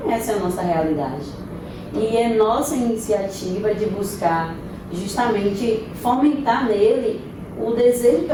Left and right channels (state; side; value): identical; both; correlation 1.00